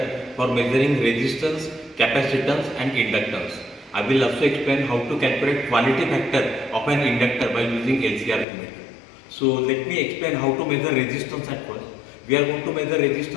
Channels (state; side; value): drops out; right; at 8.5 s